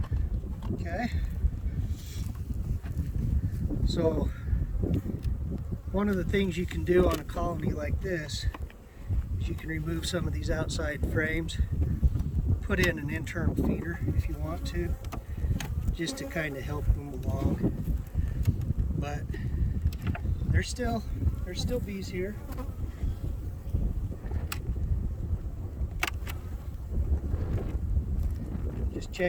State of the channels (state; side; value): identical; both; correlation 1.00